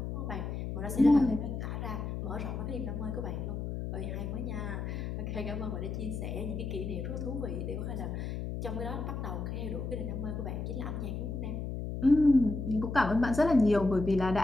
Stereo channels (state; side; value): noise; left; hum, 4 dB below the sound